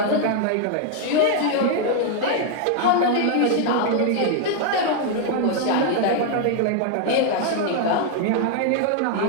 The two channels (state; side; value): different; both; correlation 0.00